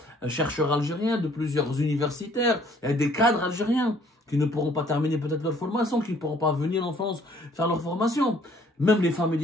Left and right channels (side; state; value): both; normal; correlation 0.60